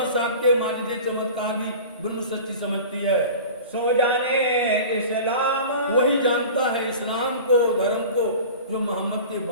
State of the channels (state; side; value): inverted; both; correlation -0.37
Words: साहब के माजिदे चमत्कार भी ब्रह्म सृष्टि समझती है। सो जाने इस्लाम, वही जानता है इस्लाम को, धर्म को। जो मोहम्मद के